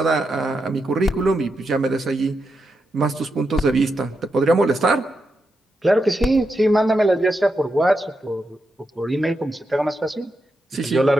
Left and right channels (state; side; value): normal; both; correlation 0.85